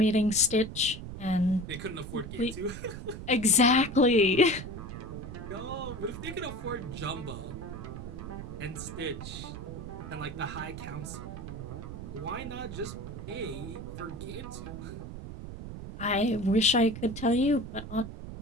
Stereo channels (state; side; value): noise; right; rumble, 9 dB below the sound